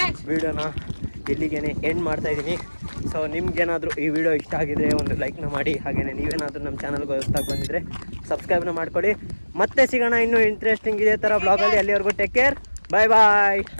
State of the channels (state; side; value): inverted; both; correlation -1.00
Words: ವೀಡಿಯೋನ ಇಲ್ಲಿಗೇನೆ ಎಂಡ್ ಮಾಡ್ತಾಯಿದ್ದೀನಿ. ಸೊ ನಿಮ್ಗೇನಾದರೂ ಈ ವಿಡಿಯೋ ಇಷ್ಟ ಆಗಿದ್ರೆ ಒಂದು ಲೈಕ್ನ ಮಾಡಿ. ಹಾಗೆಯೇ ನೀವೇನಾದರೂ ನಮ್ಮ ಚಾನಲ್ಗೆ ಹೊಸ್ದಾಗಿ ಬಂದಿದ್ರೆ ಸಬ್ಸ್ಕ್ರೈಬ್ನ ಮಾಡ್ಕೊಳ್ಳಿ. ಮತ್ತೆ ಸಿಗೋಣ ಇನ್ನೂ ಇಂಟ್ರೆಸ್ಟಿಂಗ್ ಇದೇ ಥರ ಬ್ಲಾಗಲ್ಲಿ. ಅಲ್ಲಿವರೆಗೂ ಟೇಕ್ ಕೇರ್, ಬಾಯ್ ಬಾಯ್.